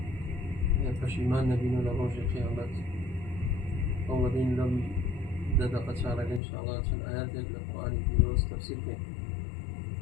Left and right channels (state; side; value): drops out; right; at 6.4 s